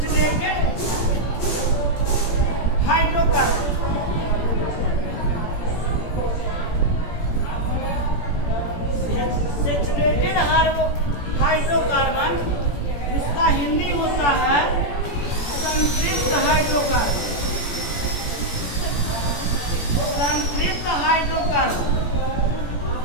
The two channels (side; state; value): right; late; 17 ms